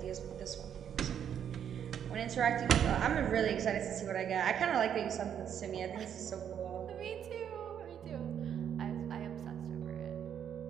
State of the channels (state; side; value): quieter; left; 8.9 dB